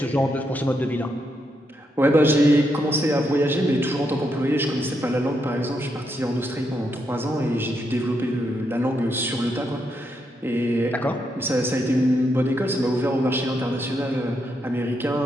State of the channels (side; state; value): both; normal; correlation 0.80